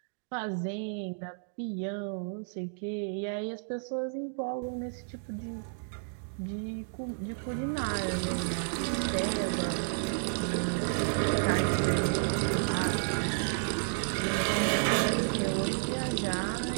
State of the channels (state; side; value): silent; left; digital silence